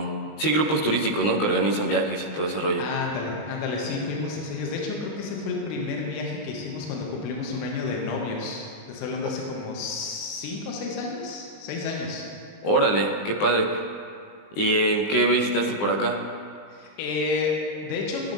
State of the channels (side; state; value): right; late; 19 ms